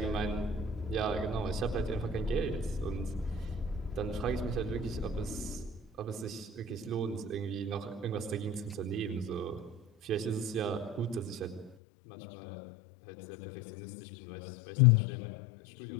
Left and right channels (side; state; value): right; drops out; at 11.7 s